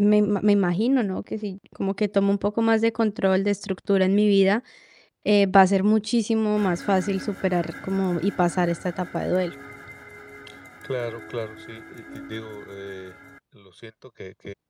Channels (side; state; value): both; identical; correlation 1.00